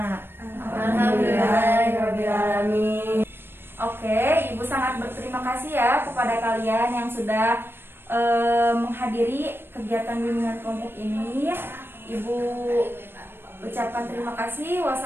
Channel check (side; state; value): left; late; 0.10 ms